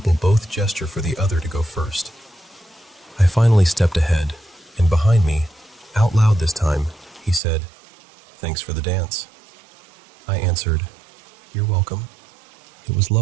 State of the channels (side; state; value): left; drops out; at 7.4 s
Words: both gesture for the other to go first. I finally stepped ahead, and behind me, out loud this time, he said, "Thanks for the dance." I answered, "You're welcome." It was